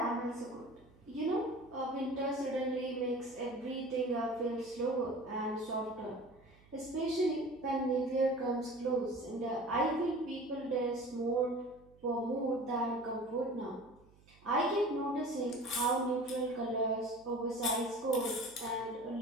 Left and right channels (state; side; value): noise; right; hum, 27 dB below the sound